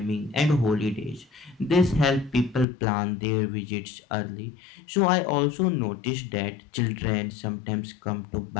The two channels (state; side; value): drops out; right; at 2.7 s